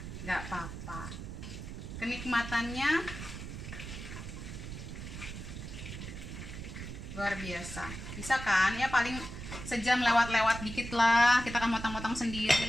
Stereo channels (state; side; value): noise; right; rumble, 9 dB below the sound